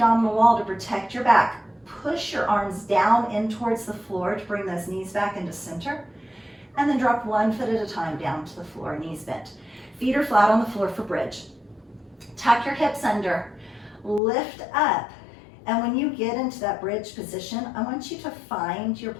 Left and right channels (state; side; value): drops out; right; at 14.2 s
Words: wall to protect your back. Push your arms down in towards the floor to bring those knees back into center. And then drop 1 foot at a time down to the floor, knees bent. Feet are flat on the floor for bridge. Tuck your hips under, lift up. And when you get into that bridge position, I want you to find your